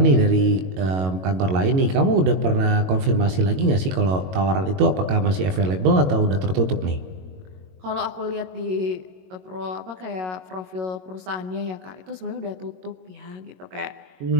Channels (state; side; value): late; left; 22 ms